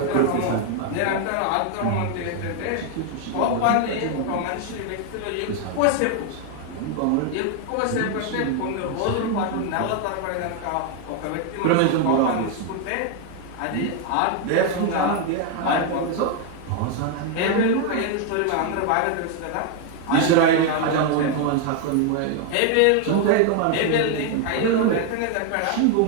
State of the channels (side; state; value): both; different; correlation 0.00